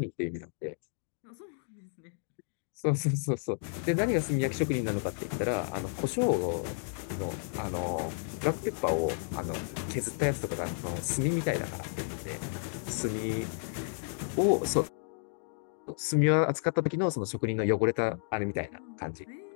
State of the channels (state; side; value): silent; right; digital silence